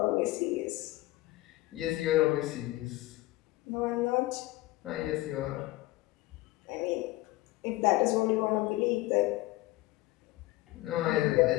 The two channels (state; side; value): quieter; right; 18.7 dB